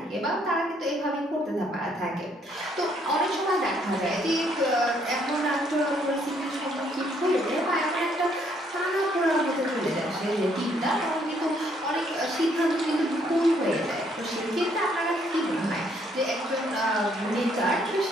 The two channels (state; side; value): normal; both; correlation 0.68